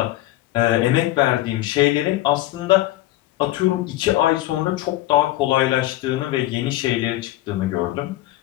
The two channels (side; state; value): right; quieter; 15.8 dB